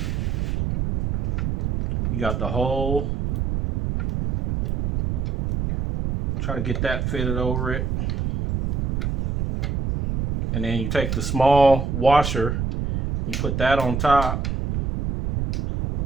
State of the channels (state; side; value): noise; right; rumble, 1 dB below the sound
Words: You got the hole. Try to get that fitted over it. And then you take the small washer, you put that on top.